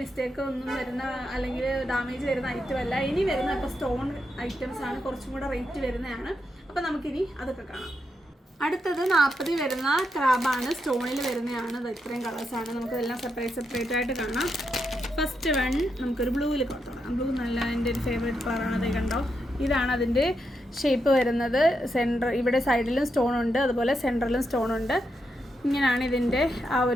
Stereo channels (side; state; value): both; normal; correlation 0.83